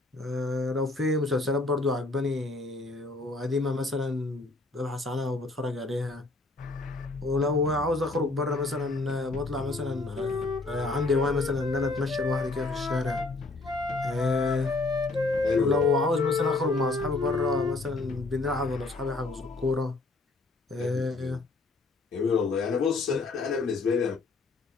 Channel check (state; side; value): quieter; right; 3.2 dB